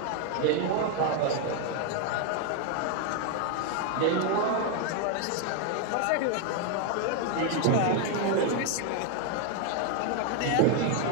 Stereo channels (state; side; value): different; both; correlation 0.01